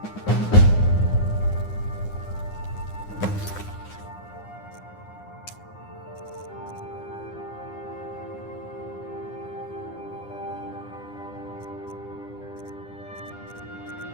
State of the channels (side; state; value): right; late; 9.8 ms